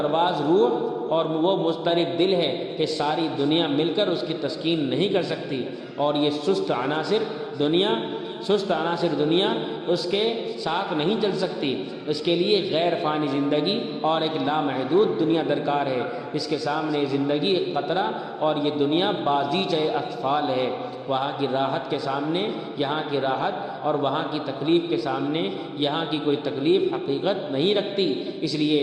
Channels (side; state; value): both; identical; correlation 1.00